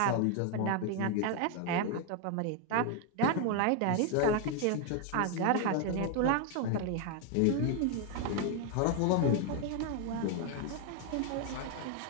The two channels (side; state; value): both; different; correlation 0.01